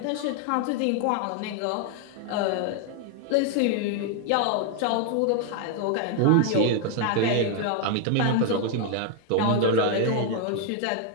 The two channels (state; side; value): different; both; correlation 0.00